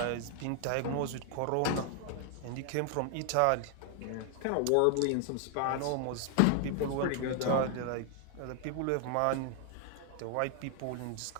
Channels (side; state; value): both; different; correlation 0.00